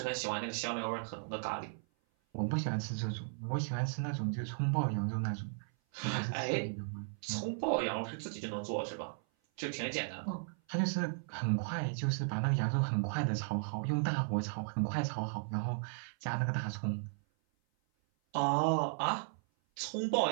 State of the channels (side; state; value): left; silent; 54 dB below the other